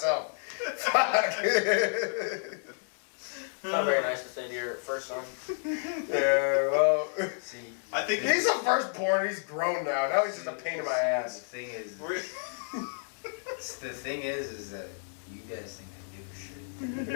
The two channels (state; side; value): silent; right; 57 dB below the other